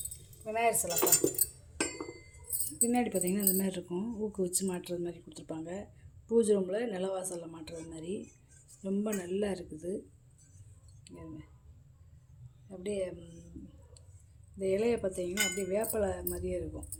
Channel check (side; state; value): both; identical; correlation 1.00